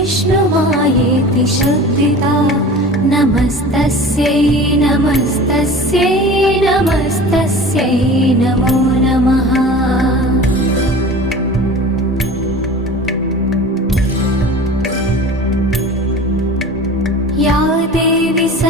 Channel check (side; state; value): both; normal; correlation 0.38